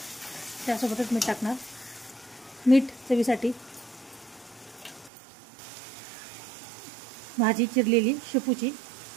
त्यासोबतच मीठ टाकणार, मीठ चवीसाठी। भाजी चिरलेली शेपूची,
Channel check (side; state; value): left; drops out; at 5.1 s